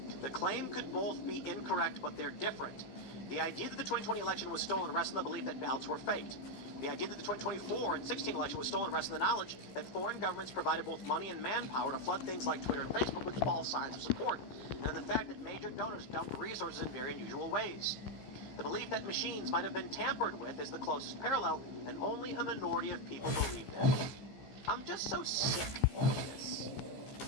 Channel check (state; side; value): late; right; 15 ms